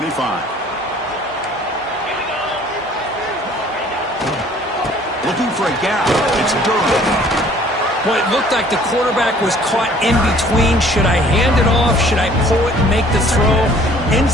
Looking for a gap. It's Durham. Well, it looked like the quarterback was caught in between. Should I hand it off? Should I pull it and make the throw?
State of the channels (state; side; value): normal; both; correlation 0.54